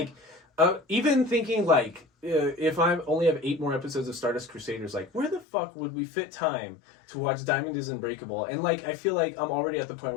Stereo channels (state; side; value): drops out; right; at 5.5 s